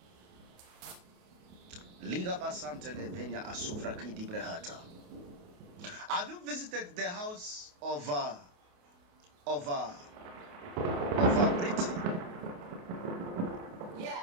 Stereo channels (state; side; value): late; left; 28 ms